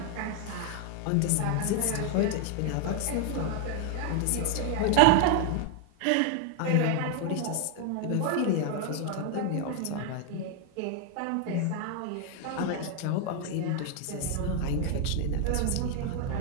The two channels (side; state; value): both; different; correlation 0.01